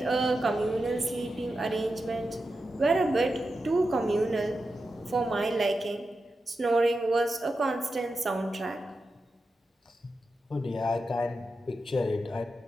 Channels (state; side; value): normal; both; correlation 0.90